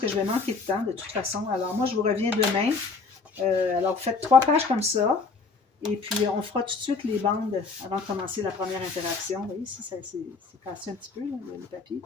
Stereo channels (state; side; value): quieter; right; 4.3 dB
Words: je vais manquer de temps de toute façon. Alors, moi, je vous reviens demain. Alors, vous faites 3 pages comme ça. Et puis, on fera tout de suite les bandes avant de commencer la première interaction. Vous voyez, ici, c'est cassé un petit peu, là, le papier.